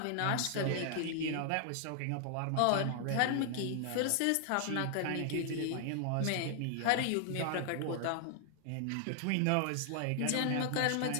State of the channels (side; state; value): both; different; correlation 0.00